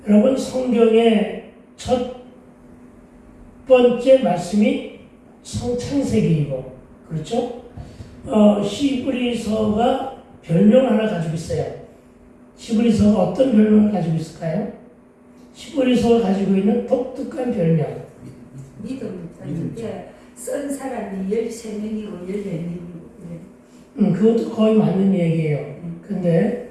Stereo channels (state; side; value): identical; both; correlation 1.00